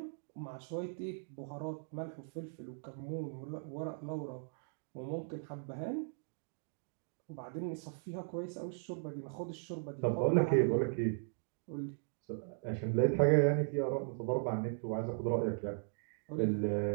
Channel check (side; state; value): left; silent; digital silence